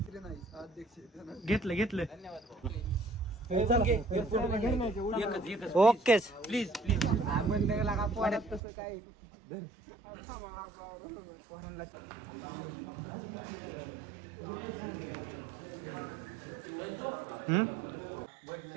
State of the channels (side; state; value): left; drops out; at 8.6 s